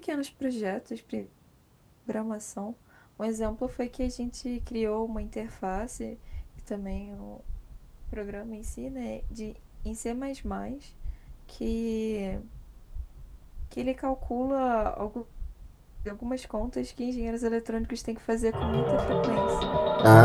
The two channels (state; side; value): identical; both; correlation 1.00